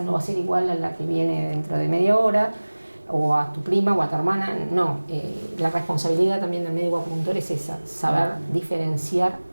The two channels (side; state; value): both; inverted; correlation -1.00